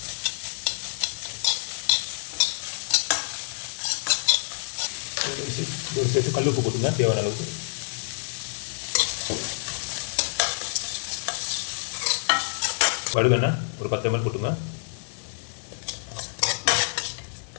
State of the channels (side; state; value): right; silent; 60 dB below the other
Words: இதோட சேர்த்து கல் உப்பு போட்டுங்க தேவையான அளவுக்கு. கடுகு எண்ணெய் ஒரு 10 ml போட்டுங்க.